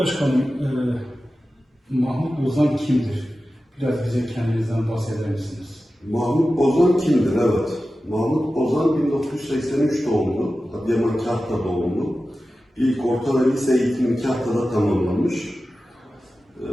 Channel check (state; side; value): normal; both; correlation 0.94